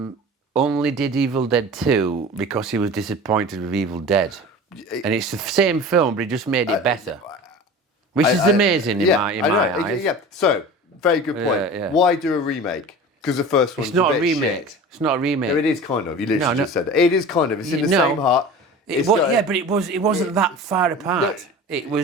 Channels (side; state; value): both; normal; correlation 0.37